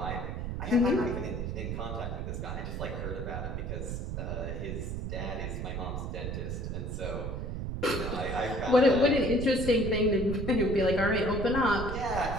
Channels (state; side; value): noise; right; rumble, 4 dB below the sound